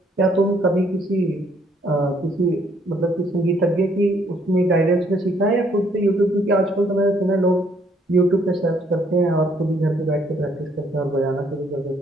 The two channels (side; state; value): both; normal; correlation 0.66